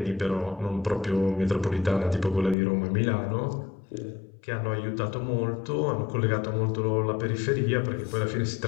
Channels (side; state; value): right; drops out; at 2.6 s